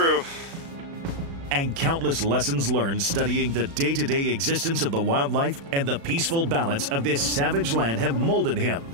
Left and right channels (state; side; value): late; left; 36 ms